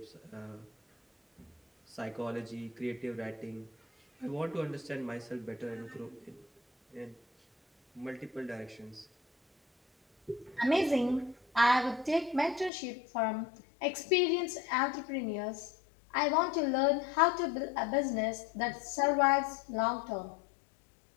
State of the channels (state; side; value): drops out; right; at 12.7 s